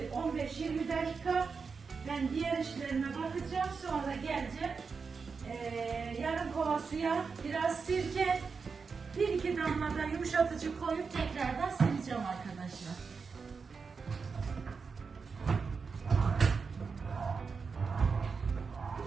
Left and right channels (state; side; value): quieter; left; 5.2 dB